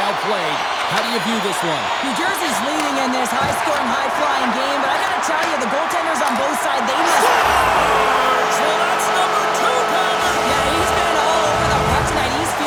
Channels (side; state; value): both; identical; correlation 1.00